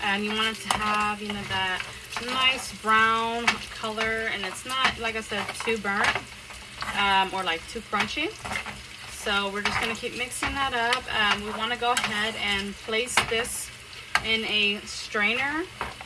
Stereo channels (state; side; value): identical; both; correlation 1.00